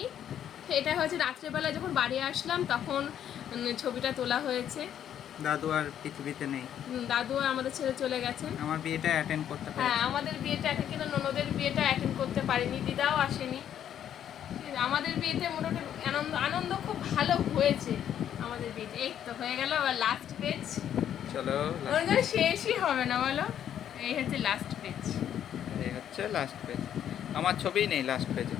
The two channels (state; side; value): quieter; right; 10.0 dB